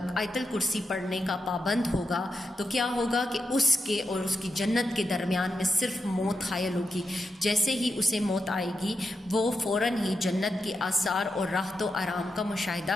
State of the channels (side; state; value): both; normal; correlation 0.86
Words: الکرسی پڑھنے کا پابند ہوگا تو کیا ہوگا کہ اس کے اور اس کی جنت کے درمیان میں صرف موت حائل ہوگی۔ جیسے ہی اسے موت آئے گی وہ فوراً ہی جنت کے آثار اور راحت و آرام کا